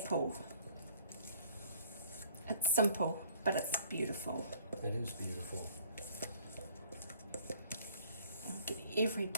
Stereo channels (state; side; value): inverted; both; correlation -0.58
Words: It's simple, but it's beautiful. It is beautiful. I'll get every